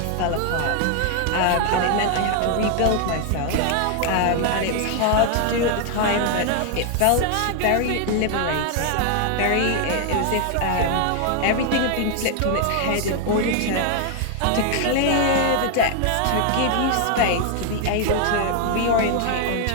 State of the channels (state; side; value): different; both; correlation 0.00